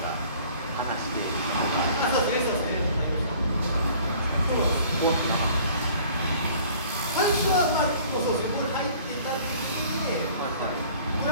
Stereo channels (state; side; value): inverted; both; correlation -0.52